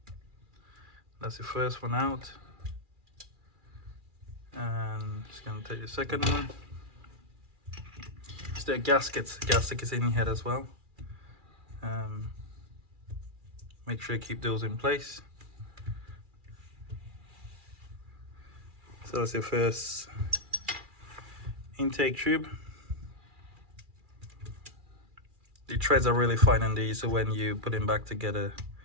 That's the first one out, and just gonna take the second one. So there are gaskets in here as well. Make sure you keep those in place. So that's your first intake tube. The threads are really fine on these, so when you put them back together,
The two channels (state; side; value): late; left; 2.4 ms